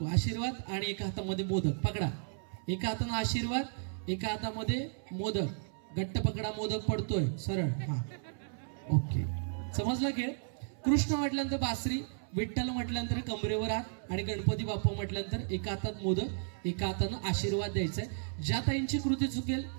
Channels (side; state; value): left; silent; 55 dB below the other